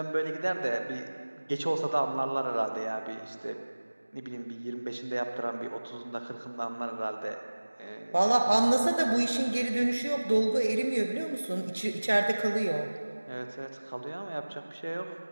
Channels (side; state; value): both; inverted; correlation -1.00